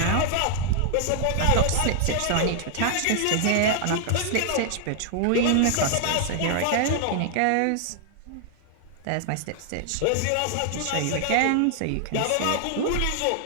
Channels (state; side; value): different; both; correlation 0.00